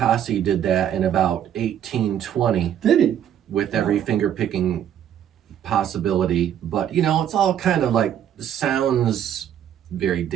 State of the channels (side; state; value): left; quieter; 9.9 dB